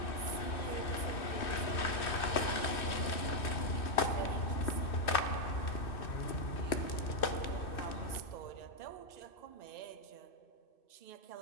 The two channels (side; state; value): right; late; 2.6 ms